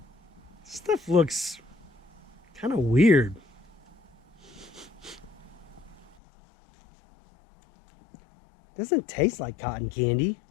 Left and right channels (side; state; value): right; drops out; at 6.2 s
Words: Stuff looks kind of weird. Doesn't taste like cotton candy.